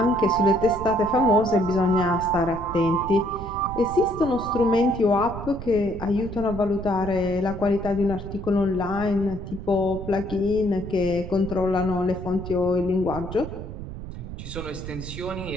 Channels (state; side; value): noise; right; rumble, 10 dB below the sound